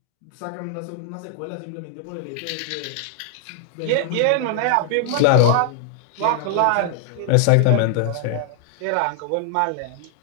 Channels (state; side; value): different; both; correlation 0.00